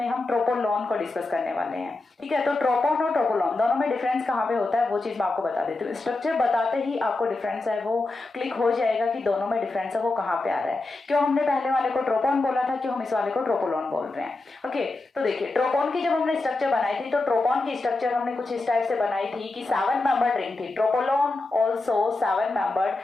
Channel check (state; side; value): quieter; right; 3.2 dB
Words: हम ट्रोपोलोन को डिस्कस करने वाले हैं। ठीक है, तो ट्रोपोन और ट्रोपोलोन दोनों में डिफरेंस कहाँ पे होता है वो चीज मैं आपको बता देती हूँ। स्ट्रक्चर बताते ही आपको डिफरेंस है वो क्लिक हो जाएगा कि दोनों में डिफरेंस है वो कहाँ पे आ रहा है। क्यों हमने पहले वाले को ट्रोपोन बोला था, क्यों हम इस वाले को ट्रोपोलोन बोल रहे हैं। ओके, तो देखिए ट्रोपोन की जब हमने स्ट्रक्चर बनाई थी तो ट्रोपोन की स्ट्रक्चर हमने कुछ इस टाइप से बनाई थी कि 7 मेंबर्ड रिंग थी। Tropolone also 7